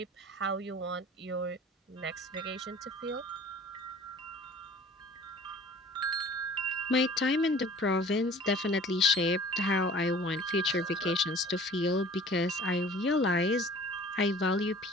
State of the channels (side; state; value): both; normal; correlation 0.47